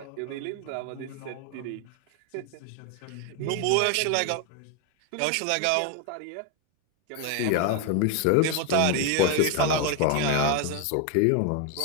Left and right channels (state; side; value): different; both; correlation 0.01